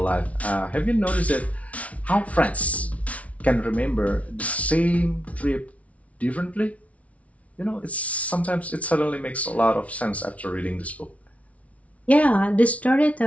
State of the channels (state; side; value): late; right; 0.066 ms